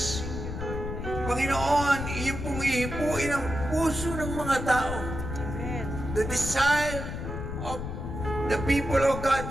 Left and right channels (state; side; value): noise; left; rumble, 6 dB below the sound